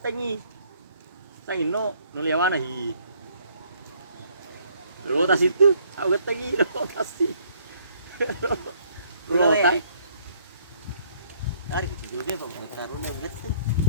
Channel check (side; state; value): both; inverted; correlation -0.64